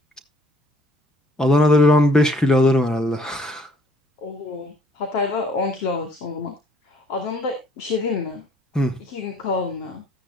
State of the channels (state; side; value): normal; both; correlation 0.60